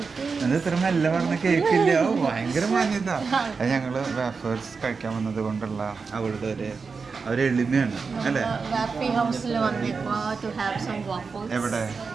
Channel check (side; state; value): left; quieter; 4.9 dB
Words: അത് ഇത്ര മെല്ലെ പറഞ്ഞ കേക്കില്ല, ഭയങ്കര മാന്യത. അത് ഞങ്ങൾ വേഫേഴ്സ് കഴിക്കാൻ വന്നത് കൊണ്ടുള്ള അവളുടെ ഒരു എളിമയാണ് അല്ലേ? എവിടെ?